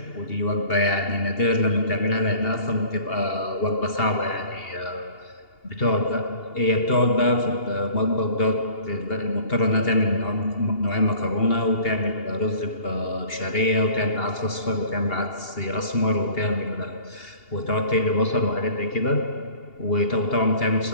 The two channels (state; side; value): late; right; 2.8 ms